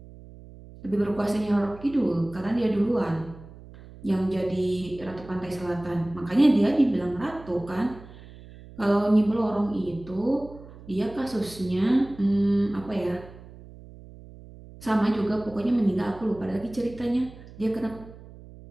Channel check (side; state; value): right; noise; hum, 18 dB below the sound